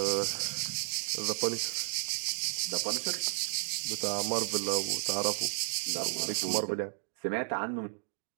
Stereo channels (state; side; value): silent; left; 56 dB below the other